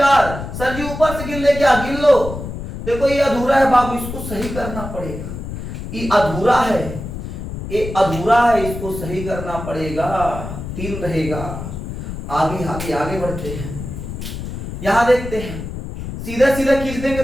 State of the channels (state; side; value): noise; left; rumble, 8 dB below the sound